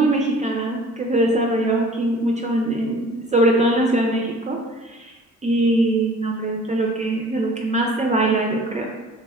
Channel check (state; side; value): normal; both; correlation 0.48